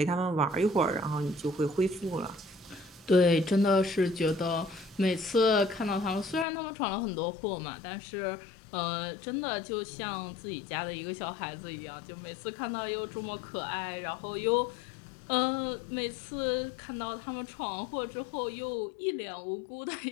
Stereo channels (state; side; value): drops out; right; at 6.5 s